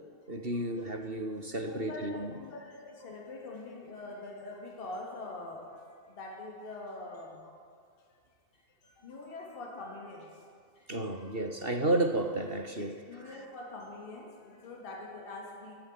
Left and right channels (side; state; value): left; late; 2.7 ms